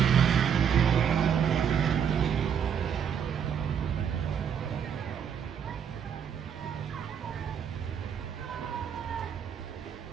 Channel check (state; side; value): quieter; left; 8.0 dB